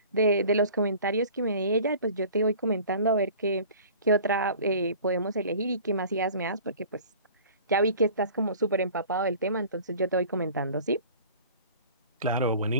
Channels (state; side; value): inverted; both; correlation -0.45